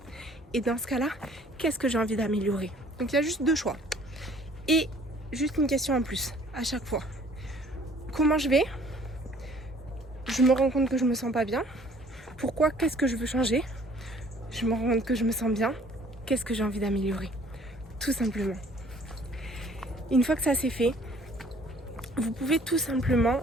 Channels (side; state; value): both; normal; correlation 0.56